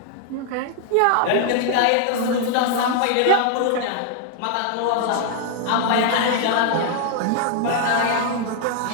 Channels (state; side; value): different; both; correlation 0.00